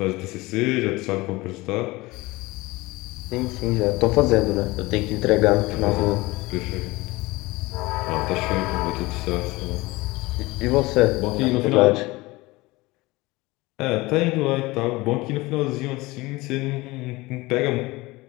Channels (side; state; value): right; quieter; 21.4 dB